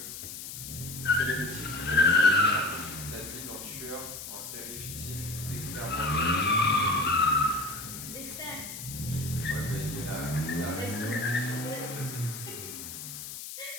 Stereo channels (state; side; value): noise; left; hiss, 9 dB below the sound